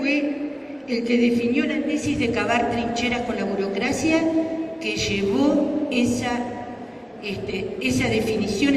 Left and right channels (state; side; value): identical; both; correlation 1.00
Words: el que definió la tesis de cavar trincheras con la burocracia, que llevó esa definición,